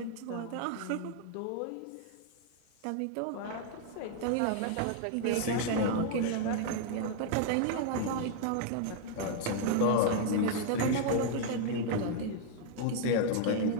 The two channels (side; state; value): both; different; correlation 0.00